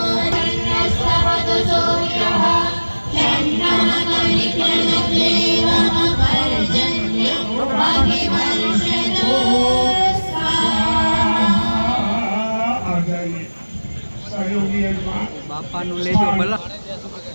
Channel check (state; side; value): inverted; both; correlation -1.00